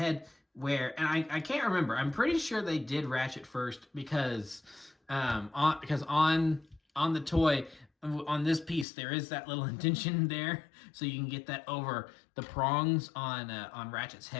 And I can't remember. I'm pretty sure they did Ratchet first because on the toy, on this piece, there is that little indentation there, so you can get that over the prongs on Ratchet's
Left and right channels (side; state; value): right; drops out; at 8.8 s